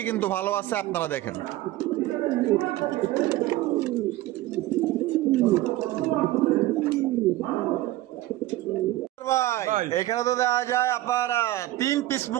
কিন্তু ভালো আছে, আপনারা দেখেন। ভাই ভাই। এখানে তো দেখা যায় আপনার 3 পিস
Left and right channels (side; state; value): left; quieter; 16.2 dB